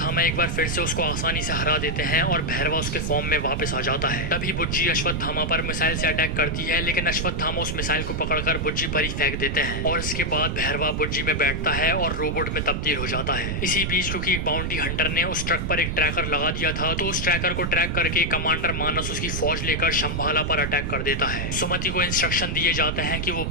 एक बार फिर से उसको आसानी से हरा देते हैं और भैरवा उसके फॉर्म में वापस आ जाता है। तभी बुज्जी अश्वत्थामा पर मिसाइल से अटैक करती है, लेकिन अश्वत्थामा उस मिसाइल को पकड़कर बुज्जी पर ही फेंक देते हैं और इसके बाद भैरवा बुज्जी में बैठता है और रोबोट में तब्दील हो जाता है। इसी बीच क्योंकि एक बाउंटी हंटर ने उस ट्रक पर एक ट्रैकर लगा दिया था, तो उस ट्रैकर को ट्रैक करके कमांडर मानस उसकी फौज लेकर शंभाला पर अटैक कर देता है। सुमति को इंस्ट्रक्शन दिए जाते हैं कि वो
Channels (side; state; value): right; noise; rumble, 2 dB below the sound